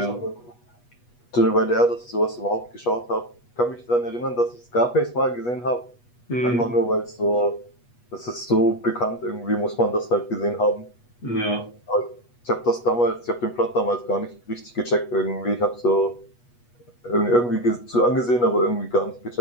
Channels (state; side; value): late; right; 8.3 ms